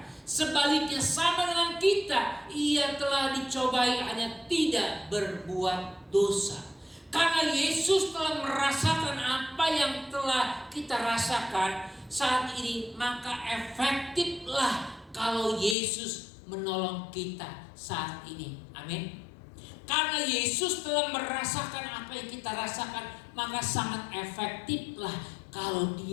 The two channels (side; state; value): right; drops out; at 15.8 s